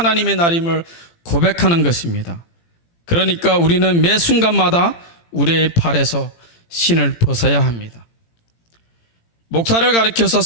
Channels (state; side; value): late; right; 18 ms